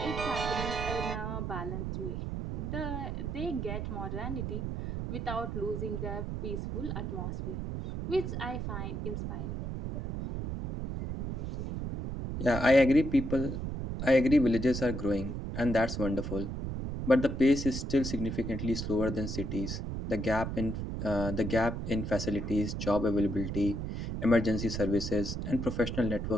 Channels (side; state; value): right; noise; rumble, 4 dB below the sound